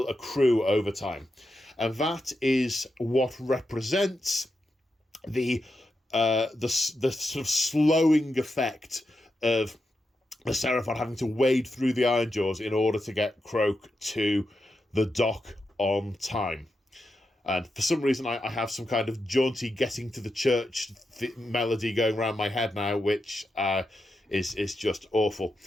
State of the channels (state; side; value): normal; both; correlation 0.87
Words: accrue over time. And that is what represents the sort of slowing effect of the Seraphon having to wade through the Ironjaws in order to get Croak to the dock on time. And for some reason, I have some kind of jaunty getting to the church melody going around my head now, which is just awful.